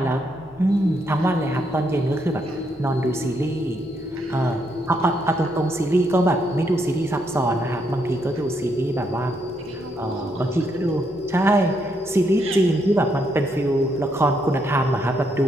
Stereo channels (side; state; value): both; normal; correlation 0.76